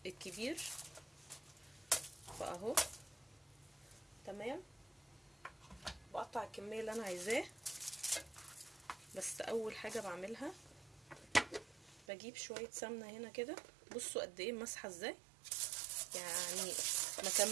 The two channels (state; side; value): drops out; left; at 12.1 s